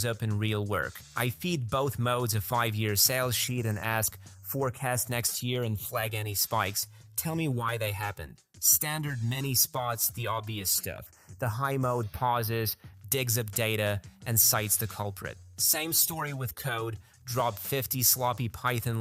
up in real work. I feed both modes a 5-year sales sheet and ask, forecast next year and flag any spikes. Tell me why they happened. Standard Mini spots the obvious stuff. The high mode pauses, digs up data, and cites the culprit. Same story with code. Drop 50 sloppy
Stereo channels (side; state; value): both; identical; correlation 1.00